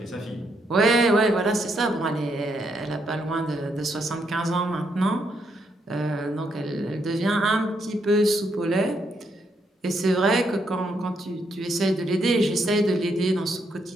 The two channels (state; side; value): normal; both; correlation 0.76